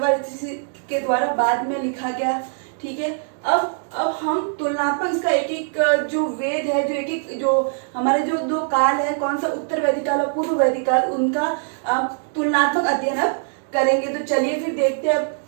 ऋषि के द्वारा बाद में लिखा गया। ठीक है। अब हम तुलनात्मक इसका एक एक जो वेद है, जो एक एक जो हमारे जो 2 काल है, कौन सा उत्तर वैदिक काल और पूर्व वैदिक काल, उनका तुलनात्मक अध्ययन अब करेंगे। तो चलिए फिर देखते हैं अब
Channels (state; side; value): silent; left; digital silence